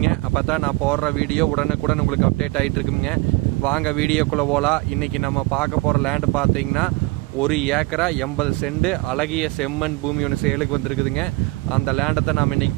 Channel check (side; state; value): left; quieter; 23.2 dB